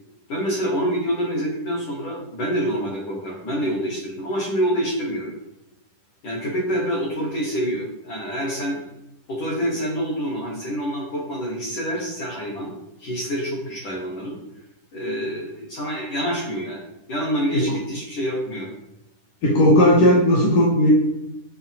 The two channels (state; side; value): late; right; 10 ms